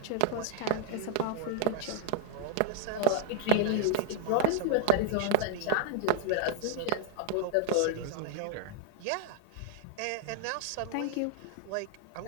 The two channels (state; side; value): different; both; correlation -0.01